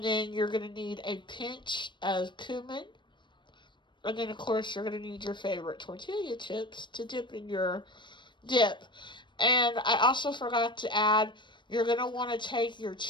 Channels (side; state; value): right; late; 0.22 ms